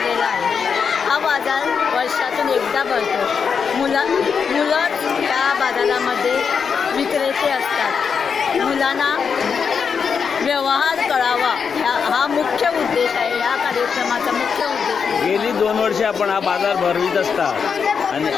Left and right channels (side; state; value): right; quieter; 6.2 dB